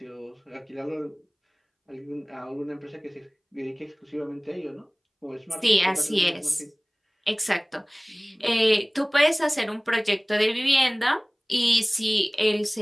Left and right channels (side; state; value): both; identical; correlation 1.00